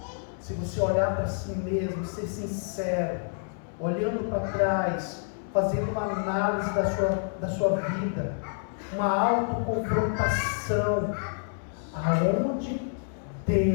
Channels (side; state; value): right; silent; 58 dB below the other